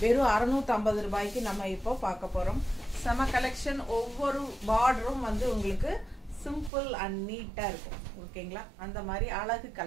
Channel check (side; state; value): left; drops out; at 6.7 s